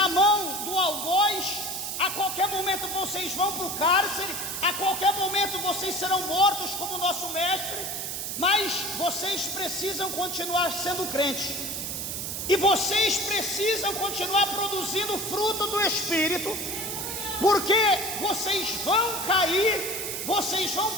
mão do algoz, a qualquer momento vocês vão para o cárcere, a qualquer momento vocês serão mortos como nosso mestre. Mas vocês precisam continuar sendo crentes, e vocês precisam continuar produzindo o fruto do Espírito, porque vocês vão cair, vocês vão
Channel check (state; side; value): noise; right; hiss, 4 dB below the sound